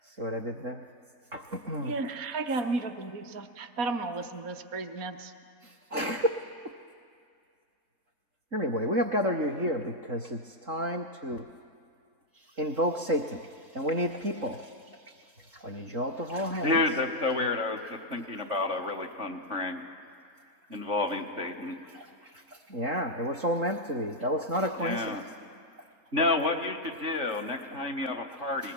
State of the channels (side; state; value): left; late; 3.9 ms